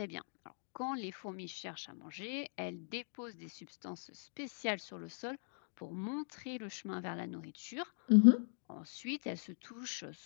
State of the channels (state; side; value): silent; right; digital silence